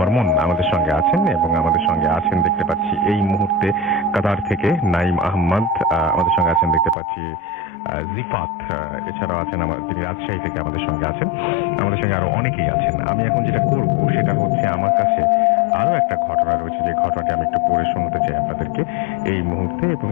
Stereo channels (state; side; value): drops out; right; at 7.0 s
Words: আমাদের সঙ্গে আছেন, এবং আমাদের সঙ্গে আছেন দেখতে পাচ্ছি এই মুহূর্তে কাতার থেকে নাইম আহমদ, আমাদের সঙ্গে আছেন দেখতে পাচ্ছি জিফাত, এছাড়াও আছেন তিনি রাজশাহী থেকে আমাদের সঙ্গে আছেন, আমাদের সঙ্গে আরো অনেকেই আছেন। আমি এখন যেটা করব সেটা হচ্ছে আমার কাছে আরো একটা ঘটনা রয়েছে, যে ঘটনাটি আমি একটু পড়ে শোনাতে চাই আপনাদেরকে এই মুহূর্তে, এবং